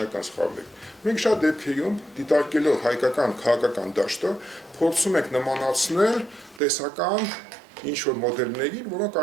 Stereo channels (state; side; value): drops out; left; at 6.6 s